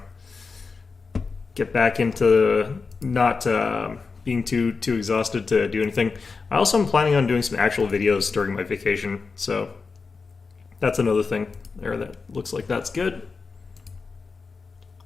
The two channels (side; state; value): right; quieter; 4.6 dB